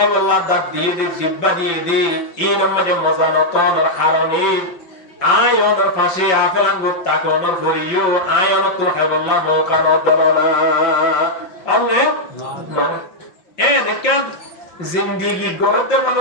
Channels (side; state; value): right; late; 5.5 ms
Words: আল্লাহ দাঁত দিয়ে দে জিহ্বা দিয়ে দে ইন মানে মজা নতন কারণে আয়নের পাশে আপেল আঙ্গুর তাকনের করিও আয়ন তো খাইবল্লাহ নৌকার দরনা অনে এ দেখেন জিন্দেগি গড়তে